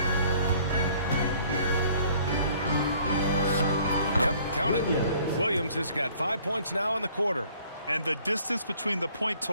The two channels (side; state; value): both; inverted; correlation -0.57